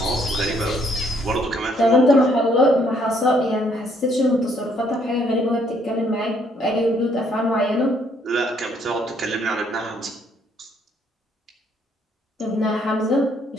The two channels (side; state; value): both; normal; correlation 0.67